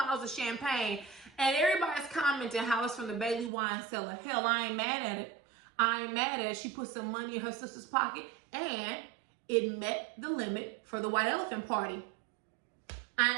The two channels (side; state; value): left; drops out; at 3.5 s